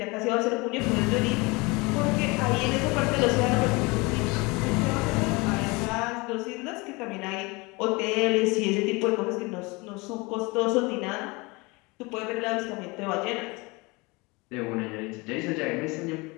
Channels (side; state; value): right; quieter; 25.6 dB